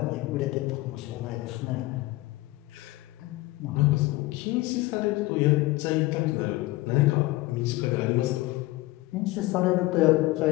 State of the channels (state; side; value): quieter; right; 19.5 dB